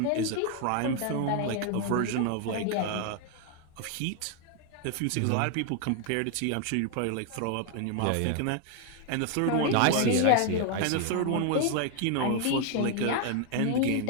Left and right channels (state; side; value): different; both; correlation 0.00